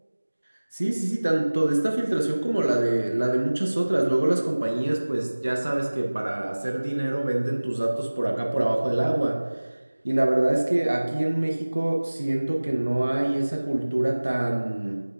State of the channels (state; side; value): inverted; both; correlation -1.00